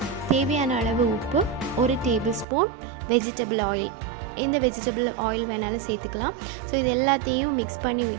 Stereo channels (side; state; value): left; drops out; at 2.5 s